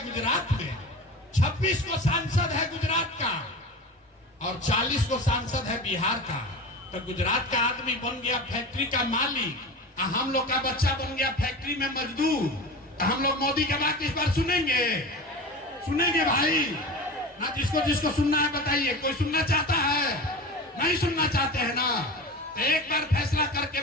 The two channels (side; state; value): both; normal; correlation 0.31